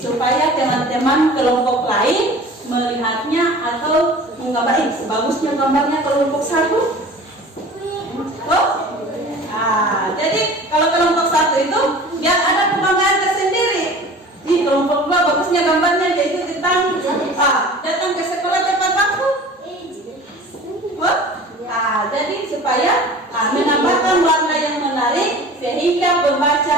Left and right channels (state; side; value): normal; both; correlation 0.42